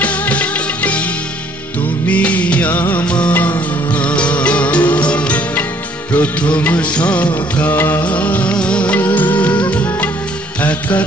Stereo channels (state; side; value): normal; both; correlation 0.62